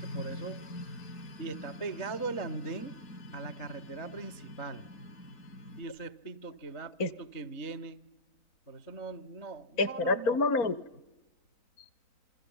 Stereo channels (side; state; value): right; late; 3.9 ms